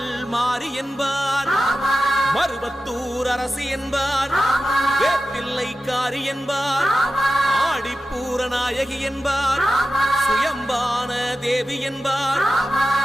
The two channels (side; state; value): both; normal; correlation 0.93